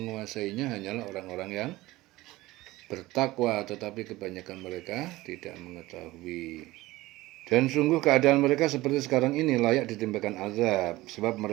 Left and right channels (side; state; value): left; quieter; 18.5 dB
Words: hanyalah orang-orang yang bertakwa, tetapi kebanyakan mereka tidak mengetahui. Dan sungguh keadaan mereka seperti sekarang ini layak ditimpakan azab, sebab